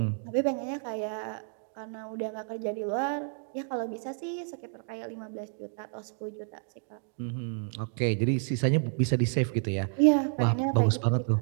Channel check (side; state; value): left; silent; 58 dB below the other